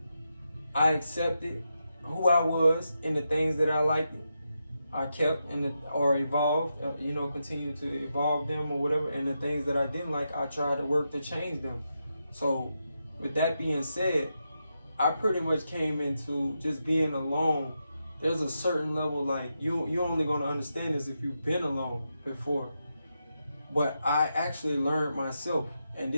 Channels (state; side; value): inverted; both; correlation -0.86